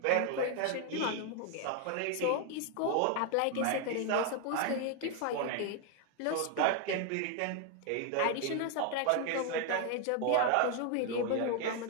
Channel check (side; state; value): both; different; correlation 0.01